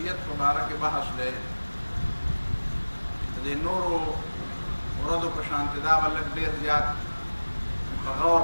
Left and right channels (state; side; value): inverted; both; correlation -1.00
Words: مبارک بحث دی د نورو ورځو په شان دا ولک ډېر زیات په غور